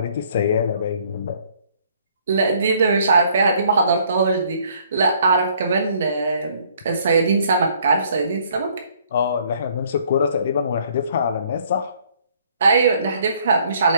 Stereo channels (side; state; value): both; inverted; correlation -0.62